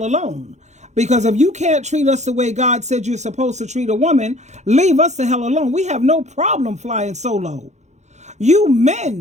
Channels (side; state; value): left; late; 0.33 ms